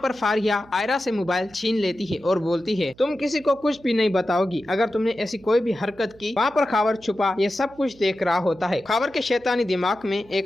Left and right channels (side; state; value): right; noise; hum, 26 dB below the sound